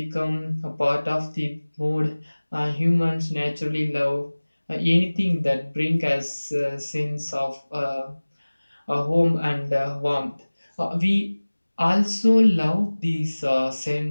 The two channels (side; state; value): both; inverted; correlation -1.00